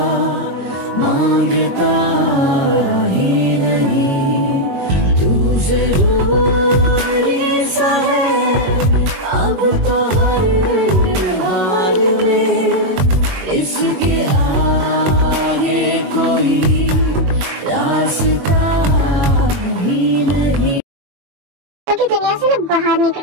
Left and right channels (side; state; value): left; late; 22 ms